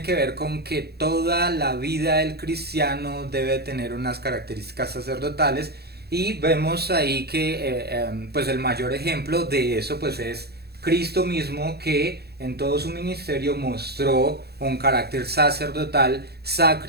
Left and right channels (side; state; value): left; late; 0.47 ms